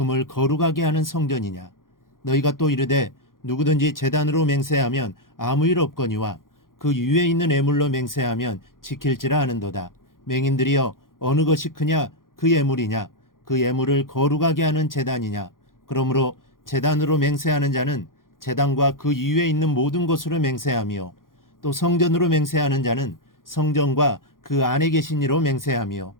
거룩하게 하는 성전이냐. 너희가 또 이르되 누구든지 제단으로 맹세하면 아무 일 없거니와 그 위에 있는 예물로 맹세하면 지킬지라 하는도다. 맹인들이여, 어느 것이 크냐, 그 예물이냐, 그 예물을 거룩하게 하는 제단이냐. 그러므로 제단으로 맹세하는 자는 제단과 그 위에 있는 모든 것으로 맹세하며, 또 성전으로 맹세하는 자는 성전과 그 안에 계신 이로 맹세하며,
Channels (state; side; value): late; right; 0.90 ms